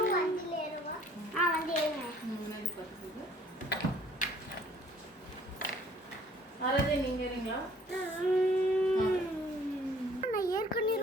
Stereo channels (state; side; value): normal; both; correlation 0.57